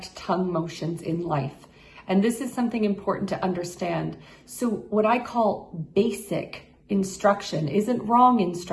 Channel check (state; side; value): identical; both; correlation 1.00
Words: tongue motions in life, and this is something important to understand. So what I call basic instruction isn't wrong